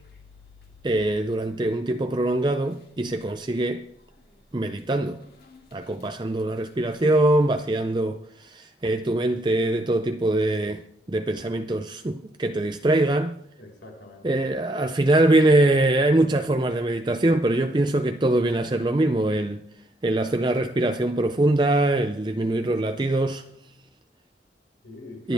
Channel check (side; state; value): both; normal; correlation 0.72